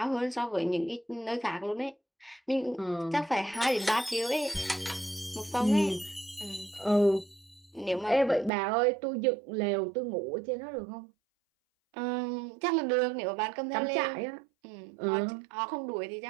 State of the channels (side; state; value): left; drops out; at 8.5 s